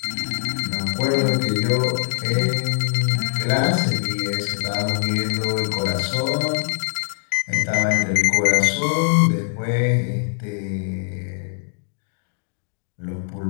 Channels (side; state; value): right; silent; digital silence